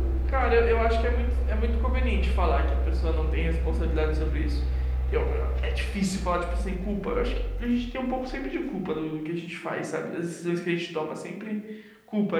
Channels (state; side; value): identical; both; correlation 1.00